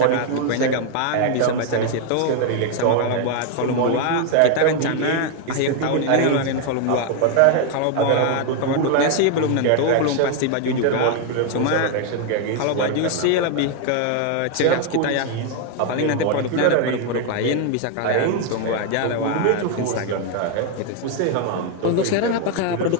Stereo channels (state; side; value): different; both; correlation 0.00